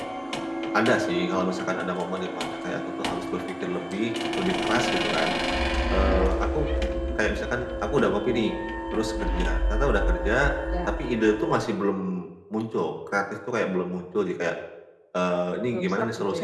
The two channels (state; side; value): identical; both; correlation 1.00